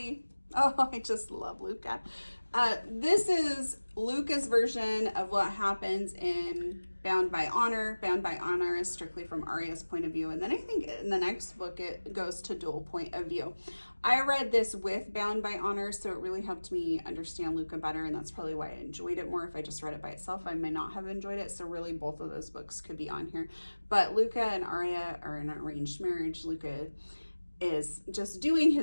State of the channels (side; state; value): both; inverted; correlation -1.00